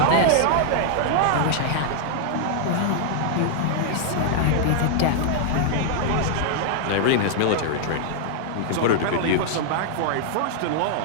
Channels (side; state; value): both; different; correlation -0.01